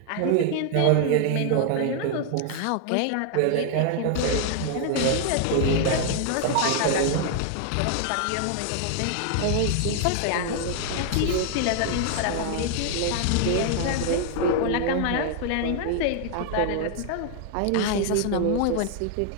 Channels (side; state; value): both; different; correlation 0.00